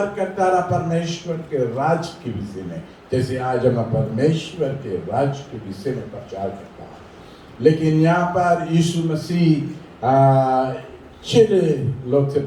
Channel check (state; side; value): identical; both; correlation 1.00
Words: करता रहा परमेश्वर के राज के विषय में, जैसे आज हम परमेश्वर के राज के विषय में प्रचार करता है। लेकिन यहाँ पर यीशु मसीह चिड़े लोग से